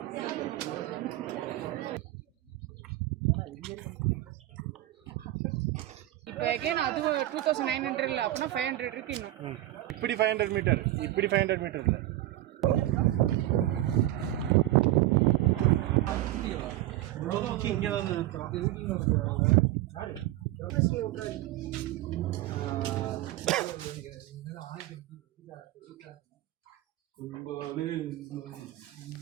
இப்போ again அது 2900 இல்ல அப்பனா 500 இருக்கு இன்னும். இப்படி 500 metre, இப்படி 500 metre இல்லை. இங்கே தான்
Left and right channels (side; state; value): left; quieter; 15.4 dB